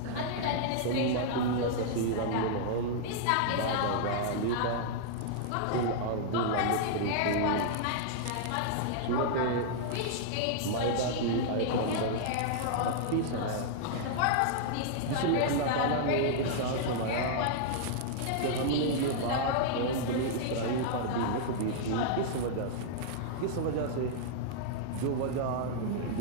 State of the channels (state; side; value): different; both; correlation -0.01